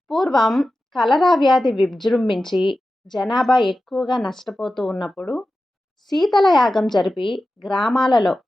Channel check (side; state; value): both; normal; correlation 0.93